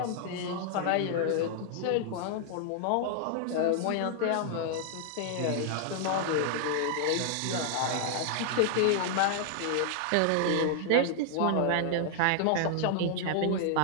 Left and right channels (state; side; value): different; both; correlation -0.01